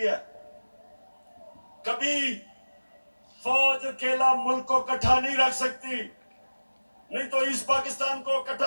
कभी फौज अकेला मुल्क को इकट्ठा नहीं रख सकती, नहीं तो ईस्ट पाकिस्तान को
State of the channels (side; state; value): both; inverted; correlation -1.00